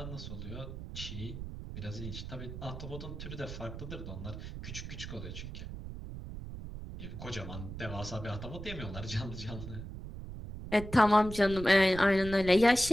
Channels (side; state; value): right; noise; rumble, 9 dB below the sound